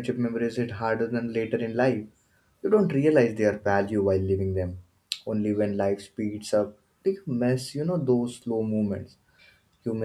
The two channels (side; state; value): both; identical; correlation 1.00